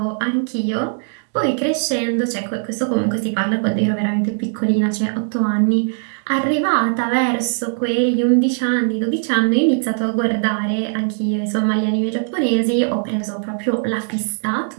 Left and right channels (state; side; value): silent; left; digital silence